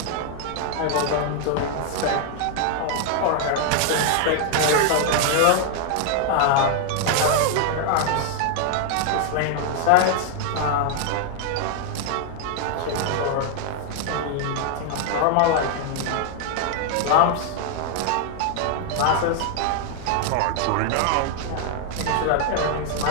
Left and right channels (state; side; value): different; both; correlation 0.00